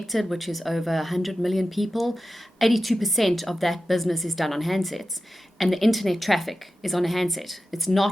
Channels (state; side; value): normal; both; correlation 0.93